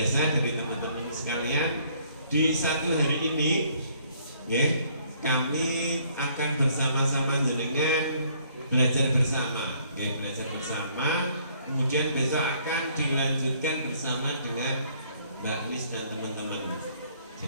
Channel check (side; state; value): both; inverted; correlation -0.64